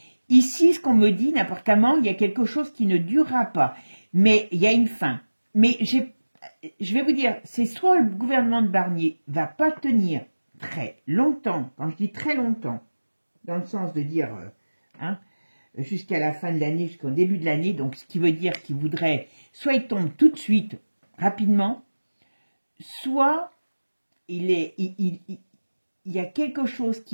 Ici, ce qu'on me dit, n'importe comment, il y a quelque chose qui ne durera pas. Mais il y a une fin. Mais je vais vous dire, c'est soit le gouvernement de Barnier va pas tenir très longtemps, quand je dis très longtemps, dans le sens de dire jusqu'à la fin de l'année, jusqu'au début de l'année, donc ce qui veut dire qu'il voudrait, soit il tombe tout de suite, rapidement, soit il y a quelque chose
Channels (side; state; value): both; inverted; correlation -1.00